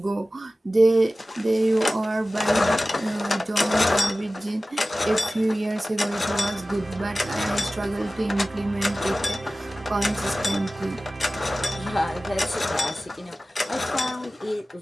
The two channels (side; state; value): both; normal; correlation 0.96